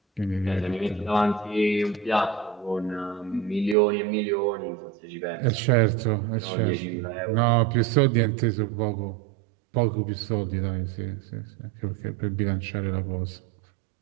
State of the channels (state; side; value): drops out; left; at 3.8 s